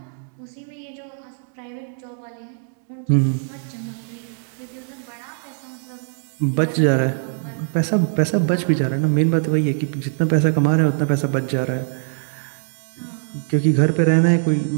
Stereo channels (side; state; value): left; silent; 57 dB below the other